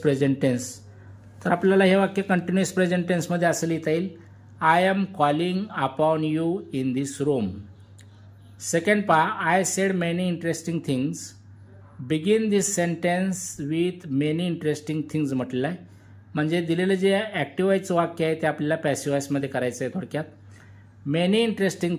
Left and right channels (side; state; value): both; identical; correlation 1.00